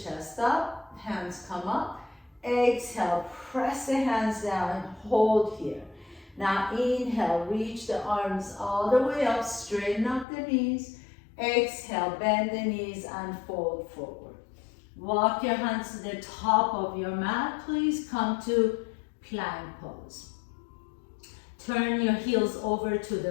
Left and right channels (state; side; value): drops out; right; at 10.2 s